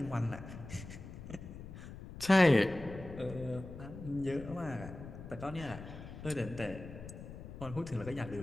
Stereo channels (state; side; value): noise; left; rumble, 12 dB below the sound